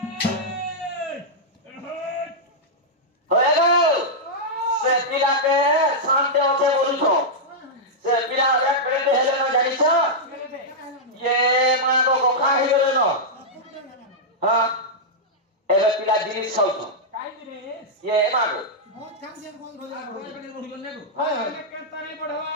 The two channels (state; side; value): normal; both; correlation -0.08